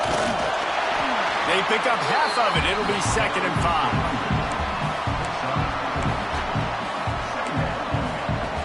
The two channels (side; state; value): both; identical; correlation 1.00